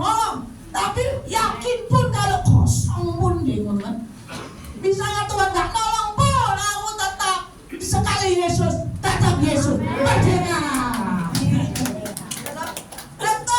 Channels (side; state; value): both; identical; correlation 1.00